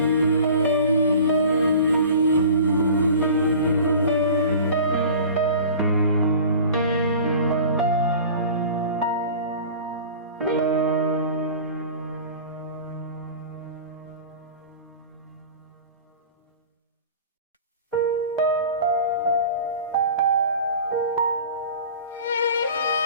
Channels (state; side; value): inverted; both; correlation -0.40